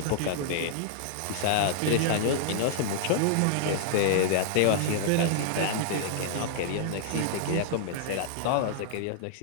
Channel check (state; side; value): different; both; correlation -0.01